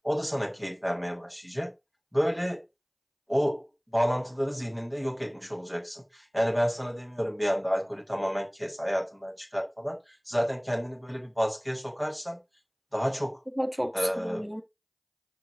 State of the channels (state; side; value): identical; both; correlation 1.00